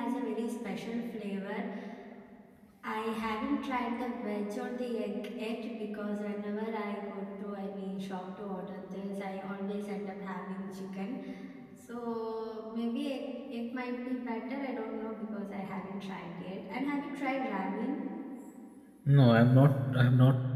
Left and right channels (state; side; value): identical; both; correlation 1.00